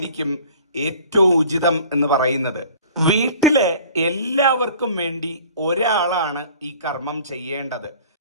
ഏറ്റവും ഉചിതം എന്ന് പറയുന്നത്. വീട്ടിലെ എല്ലാവർക്കും വേണ്ടി ഒരാളാണ് ഈ കർമ്മം ചെയ്യേണ്ടത്.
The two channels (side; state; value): both; inverted; correlation -0.48